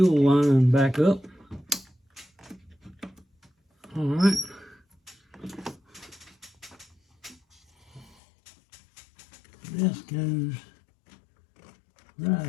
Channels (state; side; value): drops out; right; at 8.2 s